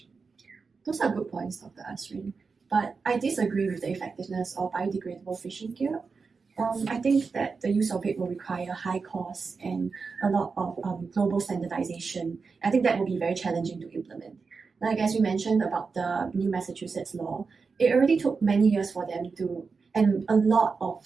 Those are good points, Dr. Azrin. But I disagree with the effectiveness of biodegradable fishing gear. I think that the use of it will require high costs and a lot of global standardization. I think that will be very challenging to implement. Like as we mentioned about the new Massachusetts law, it already took many years for them to, and a lot of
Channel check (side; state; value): left; quieter; 4.8 dB